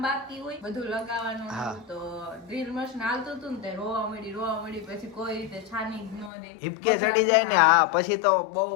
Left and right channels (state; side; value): drops out; right; at 6.3 s